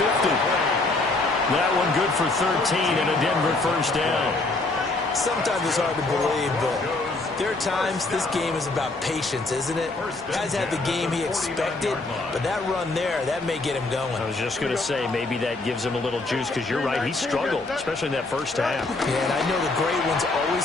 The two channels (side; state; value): right; quieter; 3.2 dB